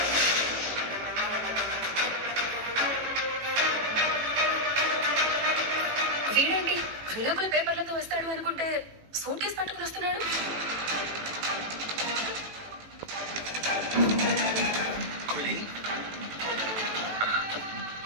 వీడేంటి విడాకుల పేపర్లతో వస్తాడు అనుకుంటే సూట్ కేసు పట్టుకుని వస్తున్నాడు.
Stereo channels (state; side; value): late; left; 18 ms